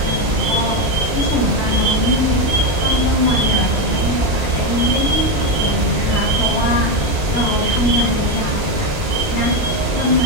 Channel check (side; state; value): left; late; 2.9 ms